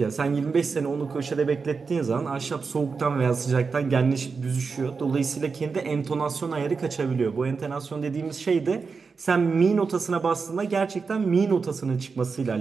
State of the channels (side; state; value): left; quieter; 5.0 dB